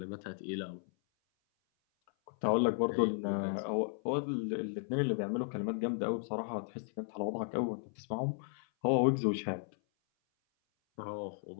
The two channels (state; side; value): silent; right; 54 dB below the other